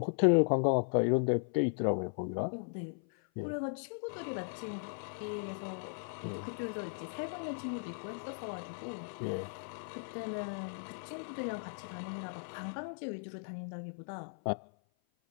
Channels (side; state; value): right; silent; 53 dB below the other